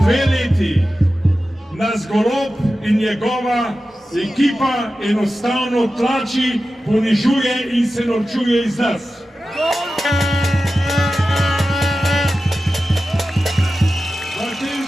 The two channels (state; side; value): normal; both; correlation 0.93